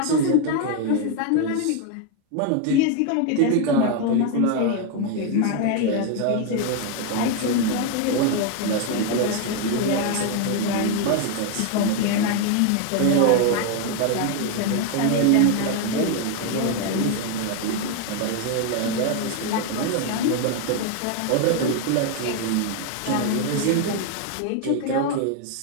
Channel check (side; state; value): both; different; correlation 0.01